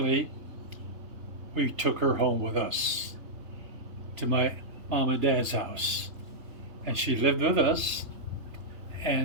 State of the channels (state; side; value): late; left; 3.2 ms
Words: we took her home with us to my mom and dad's house, and she lived with us.